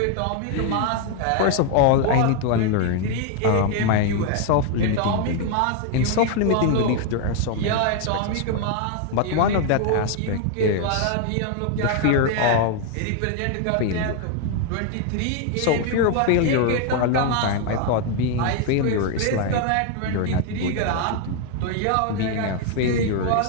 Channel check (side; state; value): both; different; correlation 0.00